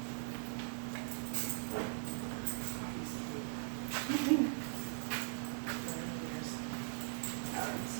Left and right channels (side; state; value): left; silent; digital silence